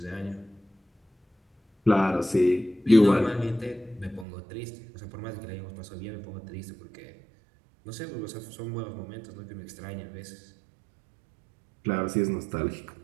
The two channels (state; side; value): drops out; left; at 4.2 s